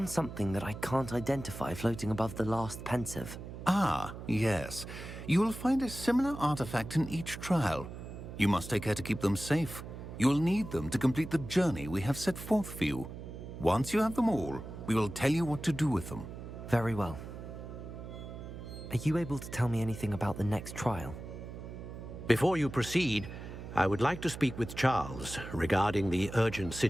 something that I can't identify floating above the last Pensive. Ah, yes. You will find a similar artifact in each trial. You must take care to keep them safe. You will need them to complete the journey we have set forth for you. Once you have them all, we will tell you what to do with them. Very well. Are you able to tell me anything about the next trial? Before you proceed, I would like to speak with Charles regarding the urgent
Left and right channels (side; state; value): right; noise; hum, 11 dB below the sound